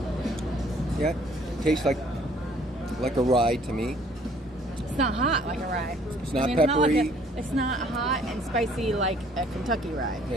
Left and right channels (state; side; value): normal; both; correlation 0.59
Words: Yeah, tastes like a rye to me. It's not hot like a rye. It's not peppery. It's not hot and spicy like a Kentucky rye.